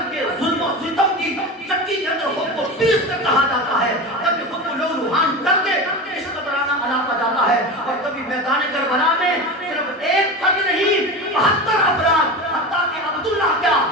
کے ظلم و ستم کی چکی کے اندر خود کو پیس کر کہا جاتا ہے. کبھی خود کو لو لوہان کر کے عشق کا ترانہ الاپا جاتا ہے. اور کبھی میدان کربلا میں صرف ایک فرد نہیں, 72 افراد, حتیٰ کہ عبداللہ کیا,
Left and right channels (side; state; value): both; normal; correlation 0.26